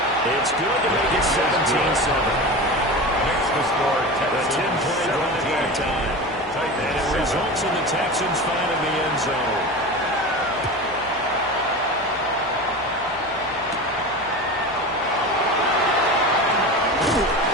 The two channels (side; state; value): left; noise; hum, 23 dB below the sound